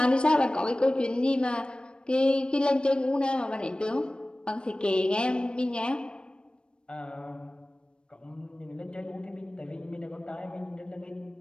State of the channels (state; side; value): late; right; 0.054 ms